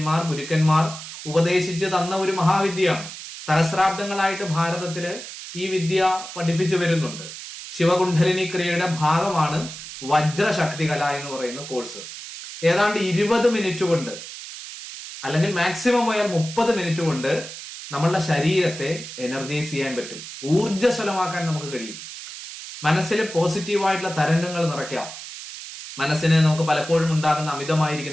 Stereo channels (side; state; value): right; noise; hiss, 11 dB below the sound